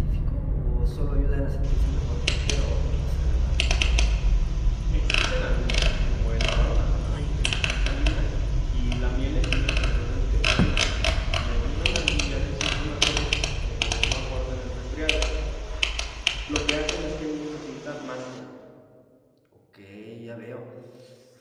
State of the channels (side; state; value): both; identical; correlation 1.00